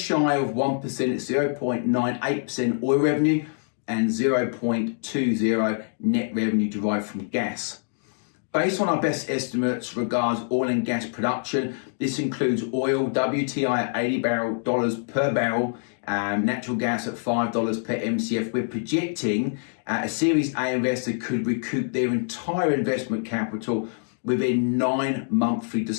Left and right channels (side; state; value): right; silent; digital silence